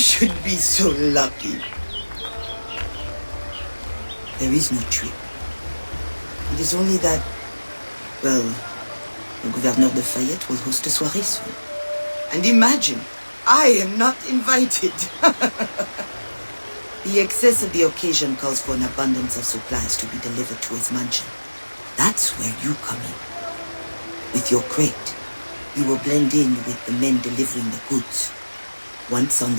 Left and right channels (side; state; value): both; inverted; correlation -1.00